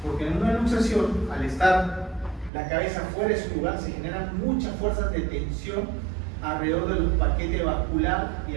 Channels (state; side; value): drops out; left; at 2.5 s